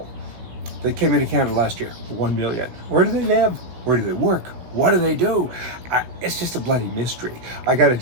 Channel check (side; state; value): left; late; 17 ms